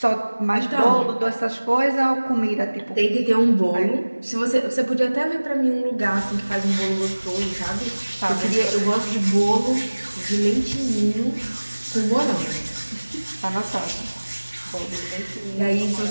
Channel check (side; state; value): both; inverted; correlation -1.00